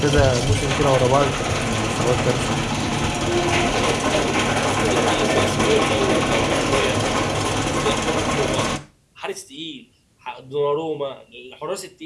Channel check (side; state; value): both; identical; correlation 1.00